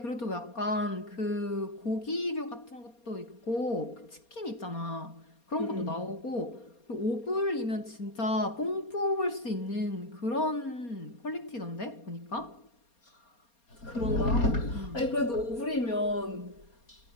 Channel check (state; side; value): late; right; 4.3 ms